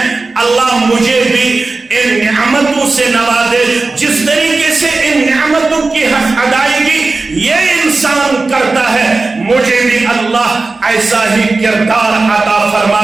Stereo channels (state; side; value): quieter; left; 3.6 dB